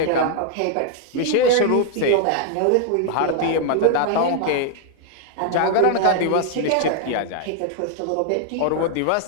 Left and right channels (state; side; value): different; both; correlation 0.00